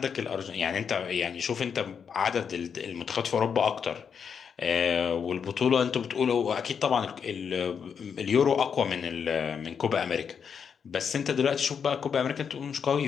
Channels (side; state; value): right; quieter; 6.8 dB